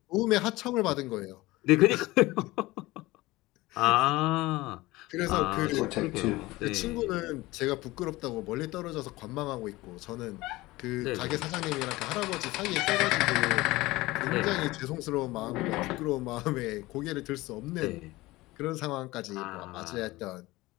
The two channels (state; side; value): quieter; right; 19.7 dB